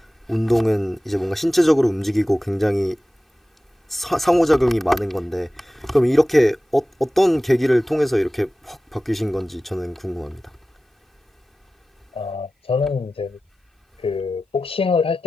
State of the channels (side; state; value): both; normal; correlation 0.95